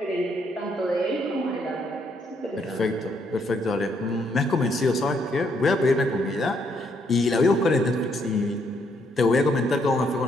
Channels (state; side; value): normal; both; correlation 0.73